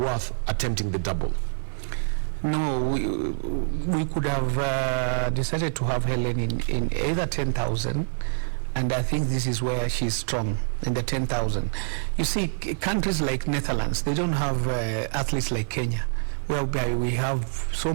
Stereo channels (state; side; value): silent; left; 56 dB below the other